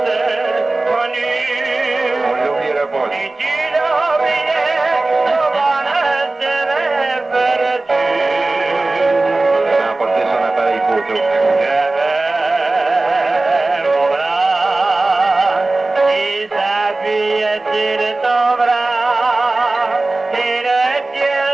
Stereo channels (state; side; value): quieter; left; 3.1 dB